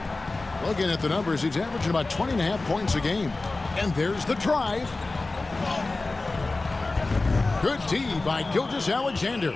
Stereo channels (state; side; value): quieter; right; 3.3 dB